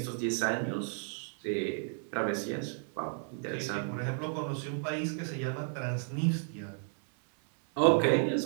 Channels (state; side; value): silent; left; 55 dB below the other